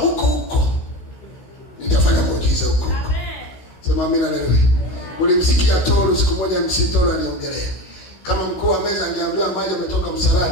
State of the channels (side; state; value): right; late; 16 ms